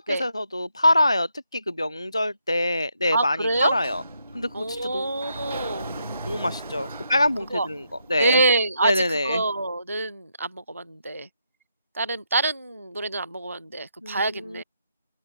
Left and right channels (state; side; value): inverted; both; correlation -0.79